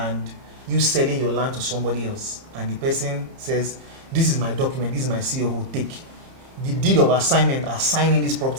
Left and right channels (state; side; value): late; left; 30 ms